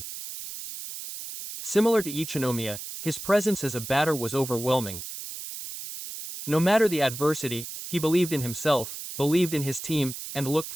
Similar to Ichinomiya, his presence as a batter was overwhelming. No matter the adversity, he believed in himself, believed in his team, and looked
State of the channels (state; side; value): noise; right; hiss, 9 dB below the sound